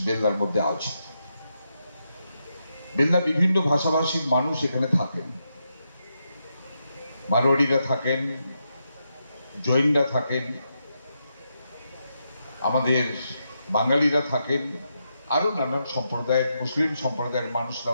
বেলদার মধ্যে আছে। বেলদা বিভিন্ন ভাষাভাষীর মানুষ এখানে থাকেন। মারোয়াড়িরা থাকেন, জৈনরা থাকেন, আমাদের বাঙালিরা থাকেন, আরো নানান সম্প্রদায়ের, মুসলিম সম্প্রদায়ের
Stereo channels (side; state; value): both; inverted; correlation -0.83